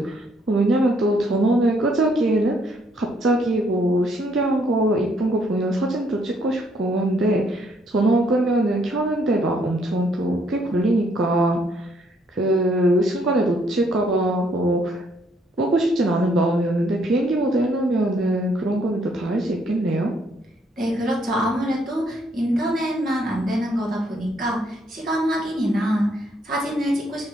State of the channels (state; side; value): normal; both; correlation 0.69